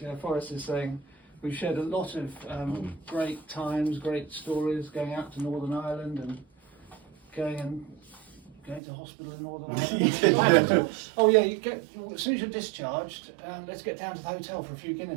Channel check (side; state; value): left; drops out; at 8.8 s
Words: Forrest is saying, we've shared a lot of great times, great stories, going out to Northern Ireland and going to hospital in Northern Ireland. Oh yeah, as soon as you're discharged, let's get down to the hotel for a few